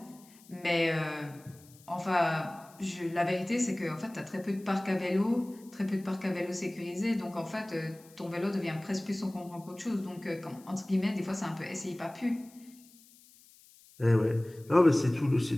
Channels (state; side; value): noise; left; hiss, 25 dB below the sound